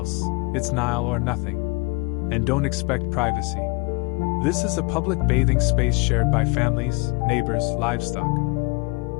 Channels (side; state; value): right; quieter; 27.2 dB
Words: it's Nile or nothing. And don't expect privacy. This is a public bathing space shared by families, neighbors, livestock.